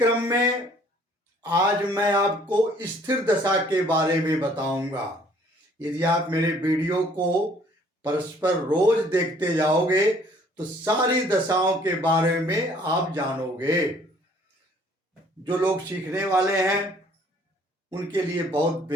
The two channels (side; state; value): both; normal; correlation 0.58